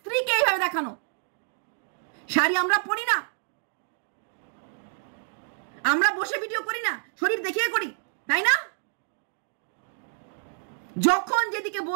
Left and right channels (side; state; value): left; silent; digital silence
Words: এইভাবে দেখানো। শাড়ি আমরা পরি না, আমরা বসে ভিডিও করি না, শরীর দেখিয়ে করি, তাই না? যখন যেদিকে